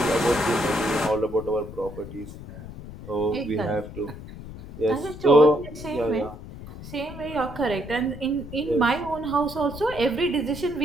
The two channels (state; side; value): noise; left; rumble, 13 dB below the sound